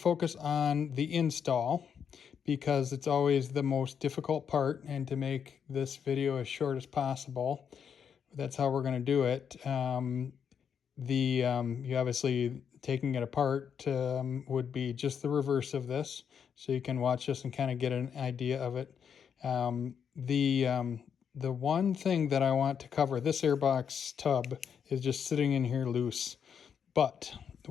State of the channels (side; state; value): right; quieter; 7.5 dB